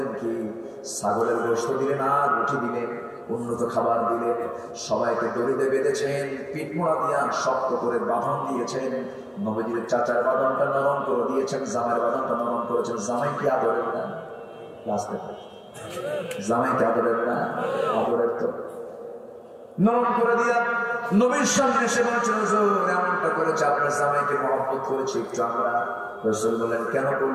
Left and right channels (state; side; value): identical; both; correlation 1.00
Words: কি, ছাগলের গোশত দিলেন আর রুটি দিলেন, উন্নত খাবার দিলেন। সবাইকে দড়িতে বেঁধেছেন, পিঠমোড়া দিয়া শক্ত করে বাঁধন দিয়েছেন। নবীদের চাচার বাঁধনটা নরম করে দিয়েছেন, জামাইয়ের বাঁধনটা নরম করেছেন। জামাই কি আদরের না? জামাই কি আদরের না? আদরের তো। নরম করে দিয়া নবীর সামনে এসে বলছেন, হুজুর এমনটা করেছে, আপনার জামাইকে মহব্বত করেছি একটু আমরা। রাসূল বললেন, কেন